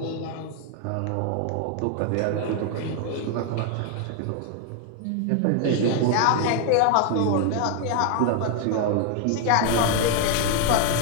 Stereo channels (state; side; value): different; both; correlation 0.00